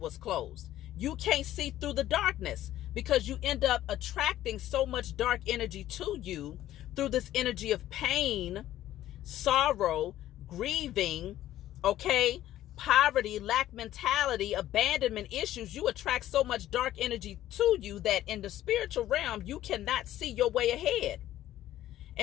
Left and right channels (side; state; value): right; quieter; 13.3 dB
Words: closed. You can't see through the darkness because you end up attracting so much dark energy to you through this energy of pain, sorrow, grieving, okay, poverty, lack mentality, abandonment issues, you attract so much dark energy to you that in the spiritual realm, you cannot see your way ahead.